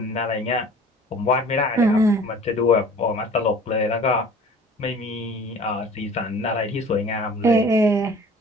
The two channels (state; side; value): normal; both; correlation 0.46